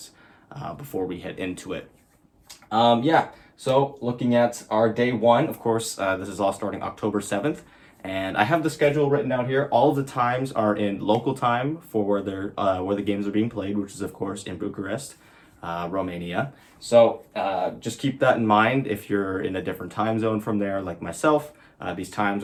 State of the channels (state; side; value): identical; both; correlation 1.00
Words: before we head into it. So looking at our day one, of course, this is all starting October 7th, and I have the schedule written out here. All of the times are in local time for where the games are being played, which is of course in Bucharest, Romania. So just keep that in mind. If you're in a different time zone from there, like myself, these times